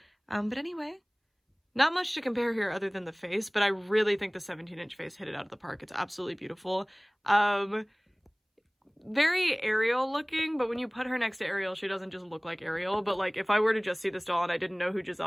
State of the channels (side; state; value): both; identical; correlation 1.00